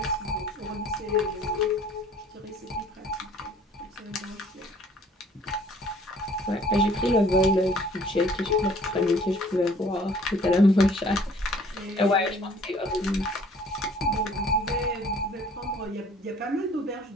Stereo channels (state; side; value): normal; both; correlation 0.55